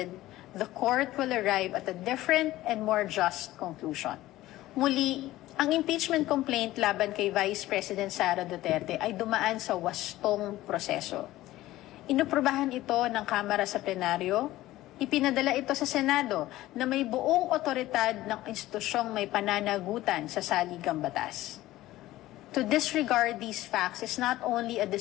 the court will arrive at a different and more just conclusion. Muli, ang impeachment complaint laban kay Vice President Sara Duterte ay dumaan sa wastong proseso. Inuprubahan ito ng Kamara sa plenaryo, ipinadala ito sa Senado na may buong otoridad ng institusyong may pananagutan sa saligang batas. To disregard these facts is not only a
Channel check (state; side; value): quieter; right; 16.1 dB